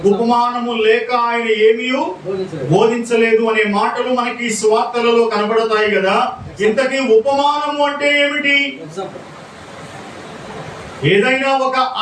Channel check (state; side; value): identical; both; correlation 1.00